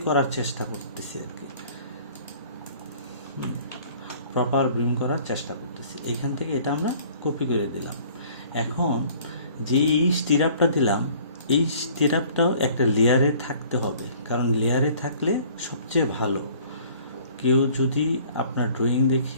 করার চেষ্টা করতেছি আর কি, প্রপার বিম করার চেষ্টা করতেছি। এইখান থেকে এটা আমরা কপি করে দিলাম। এখন যে এই স্টিরাপটা দিলাম, এই স্টিরাপটাও একটা লেয়ারে থাকতে হবে, কারণ লেয়ারে থাকলে সবচেয়ে ভালো। কেউ যদি আপনার ড্রয়িং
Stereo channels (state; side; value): inverted; both; correlation -0.53